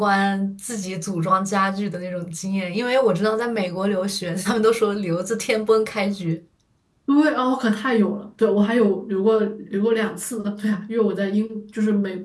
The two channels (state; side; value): identical; both; correlation 1.00